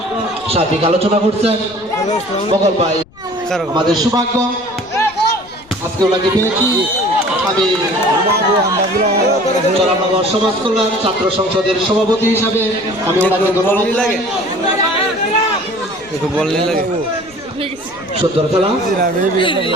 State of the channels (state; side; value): noise; left; rumble, 26 dB below the sound